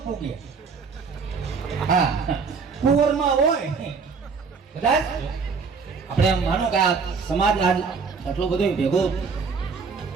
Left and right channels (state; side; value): quieter; left; 5.2 dB